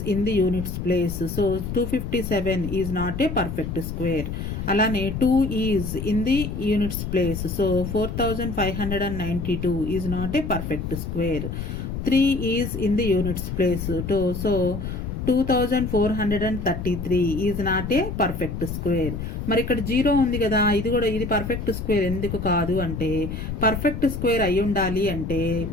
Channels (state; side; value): noise; left; rumble, 5 dB below the sound